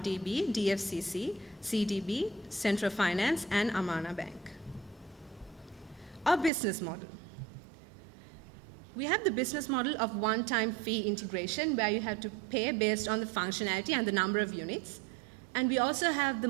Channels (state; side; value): drops out; left; at 6.5 s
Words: DFCC, CDB, Central Finance, and Amana Bank. Our business model. We have the business model of one-time fee integration where you have to pay based on the functionality and the number of units. And we also have the